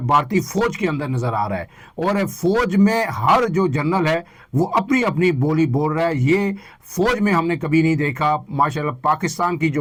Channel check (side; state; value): both; identical; correlation 1.00